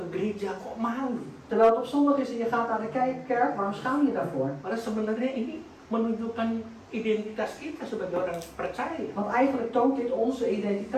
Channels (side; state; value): both; identical; correlation 1.00